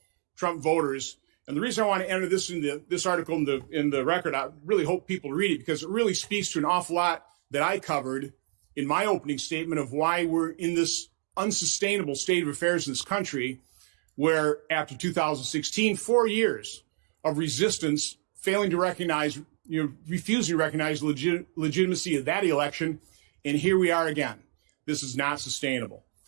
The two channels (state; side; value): silent; left; 58 dB below the other